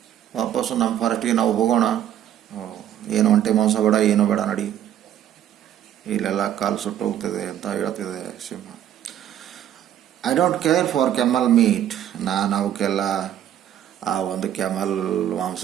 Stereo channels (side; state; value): left; quieter; 10.9 dB